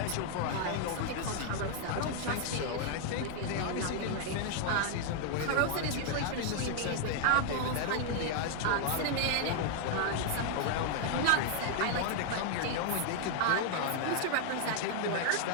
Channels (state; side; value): different; both; correlation 0.00